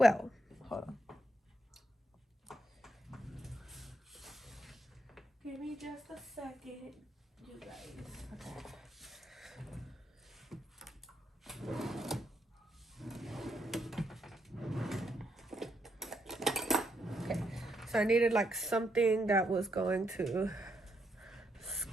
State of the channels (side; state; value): both; normal; correlation 0.79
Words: hold on. Give me just a second, you guys. Okay, so I needed like something that was going to